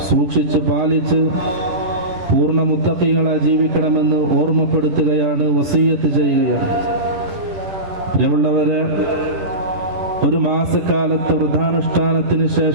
സൂക്ഷിച്ച് പാലിച്ച് പൂർണ്ണ മുത്തഖീങ്ങളായി ജീവിക്കണമെന്ന് ഓർമ്മപ്പെടുത്തുകയാണ്, വസിയ്യത്ത് ചെയ്യുകയാണ്. പ്രിയമുള്ളവരെ, ഒരു മാസക്കാലത്തെ വ്രതാനുഷ്ഠാനത്തിന്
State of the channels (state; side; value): late; left; 10 ms